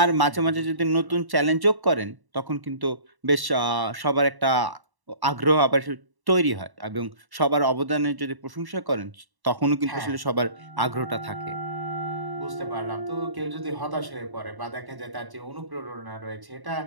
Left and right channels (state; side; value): late; left; 1.1 ms